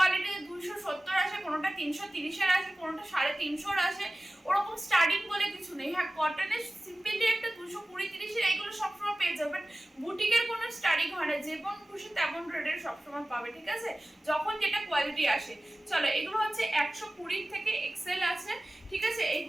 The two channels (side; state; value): both; normal; correlation 0.97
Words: 270 আসে, কোনোটা 330-এর আসে, কোনোটা 350-এর আসে। ওরকম স্টার্টিং বলে কিছু নেই। হ্যাঁ, কটনের সিম্পলি একটা 220-30-এর এইগুলো সবসময় পেয়ে যাবে। বুটিকের কোনো স্টার্টিং হয় না, যেমন খুশি তেমন রেটের সবসময় পাবে। ঠিক আছে, যখন যেটা কোয়ালিটি আসে। চলো, এগুলো হচ্ছে 120 থেকে এক্সেল আছে। ঠিক আছে,